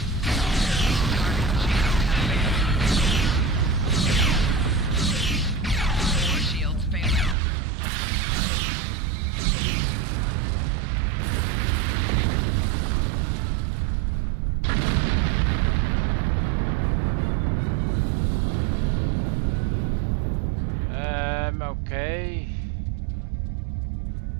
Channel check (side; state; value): left; drops out; at 7.4 s